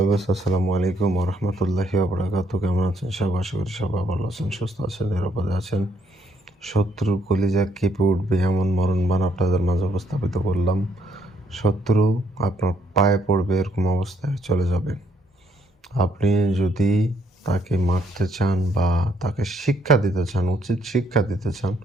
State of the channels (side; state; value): both; normal; correlation 0.70